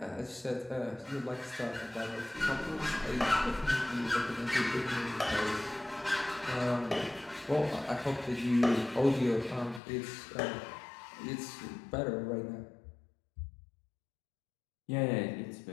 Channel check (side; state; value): right; drops out; at 9.8 s